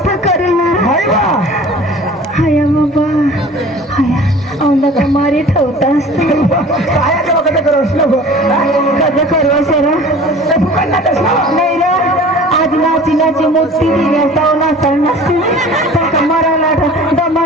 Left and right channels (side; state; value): both; normal; correlation 0.44